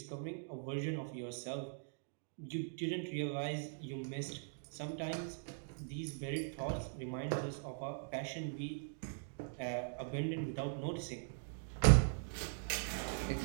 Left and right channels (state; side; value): silent; left; digital silence